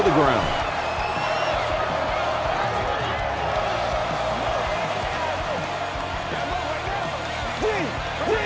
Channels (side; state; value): both; identical; correlation 1.00